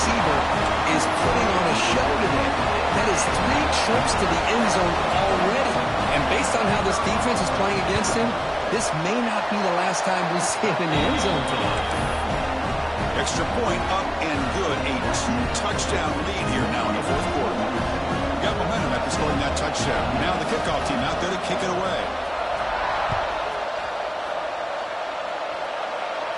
is putting on a show today. That is 3 trips to the end zone already. And based on how this defense is playing against him, this may not be the last time we see him in the end zone today. Extra point up and good. A 2-touchdown lead here now in the fourth quarter. Got momentum after scoring that touchdown. Now the kickoff team out there to kick it away.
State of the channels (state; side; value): identical; both; correlation 1.00